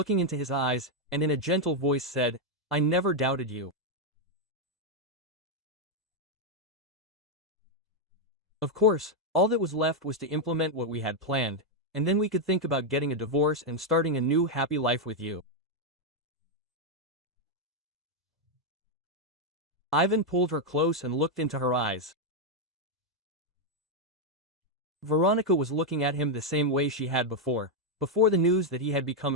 into his eyes, and in a gentle voice said, "I never doubted you." Of course, all that was left was to implement what we had planned, and then we could think about getting a divorce and starting a new happy life with you. Ivan pulled her close and looked into her eyes. Veronica was looking at him the same way she had before the news that he had become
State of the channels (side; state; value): both; normal; correlation 0.01